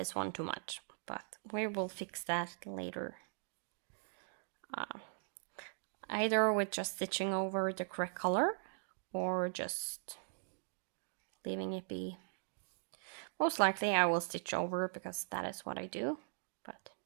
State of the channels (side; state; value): left; silent; digital silence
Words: one too much, but we will fix that later. Either with just stitching over the correct color or just leaving it be. Most likely I will stitch over because that is what I do, but